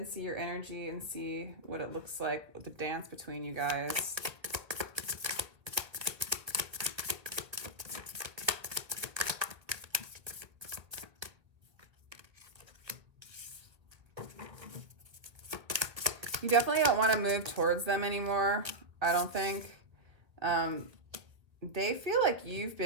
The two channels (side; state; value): left; late; 1.8 ms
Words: see your energy and see what it looks like with the dance between you guys. You definitely don't want to move towards them anymore, I don't think. they feel like you've